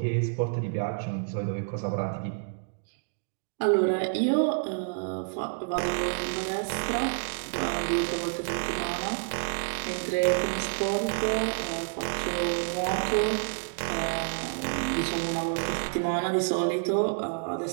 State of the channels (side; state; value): left; silent; digital silence